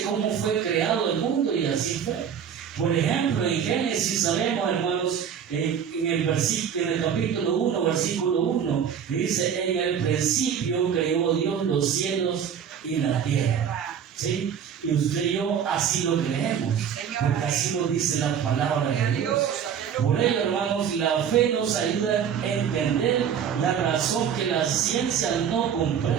cómo fue creado el mundo y así fue. Por ejemplo, en Génesis sabemos, hermanos, en el capítulo 1, versículo 1, dice: en el principio creó Dios los cielos y la tierra. ¿Sí? Y usted y yo así lo creemos, porque así lo dice la palabra de Dios. Por ello, hermanos, la fe nos ayuda a entender la razón que la ciencia no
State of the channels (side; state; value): left; quieter; 8.0 dB